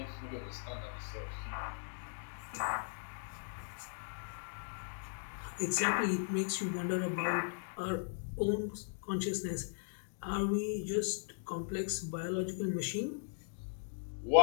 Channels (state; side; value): silent; right; digital silence